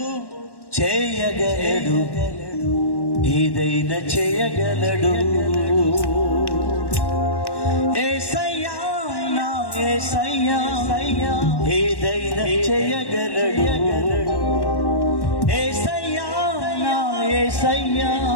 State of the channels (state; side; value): late; right; 1.1 ms